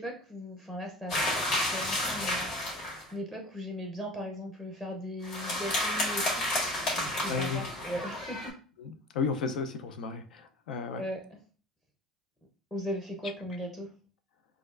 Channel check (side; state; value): both; normal; correlation 0.40